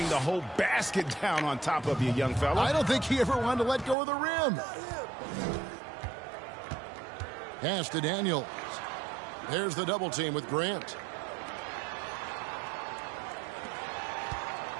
the whole basket down on top of you, young fella. I don't think he ever wanted to let go of the rim. Pass to Daniels. There's the double team with Grant.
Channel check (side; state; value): left; drops out; at 4.0 s